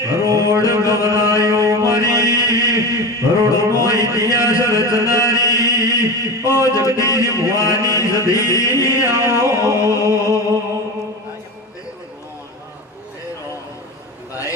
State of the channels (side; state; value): both; normal; correlation 0.25